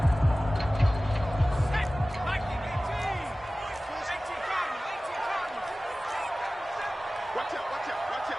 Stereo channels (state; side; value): normal; both; correlation 0.97